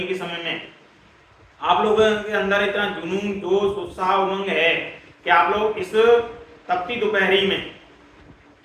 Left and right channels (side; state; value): both; identical; correlation 1.00